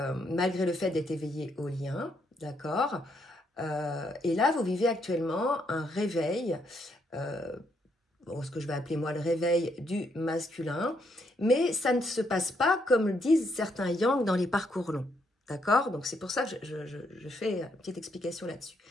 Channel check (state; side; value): normal; both; correlation 0.75